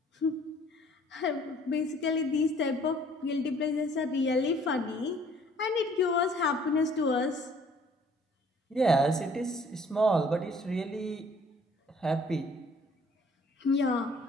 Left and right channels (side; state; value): both; normal; correlation 0.57